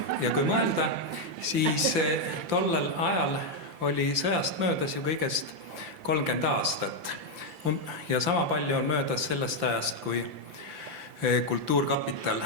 Ja kui mõelda, siis tollel ajal oli sõjast möödas ju kõigest 30 aastat. Ja sama palju on möödas sellest ajast, kui Kultuurkapital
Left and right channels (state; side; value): late; left; 5.9 ms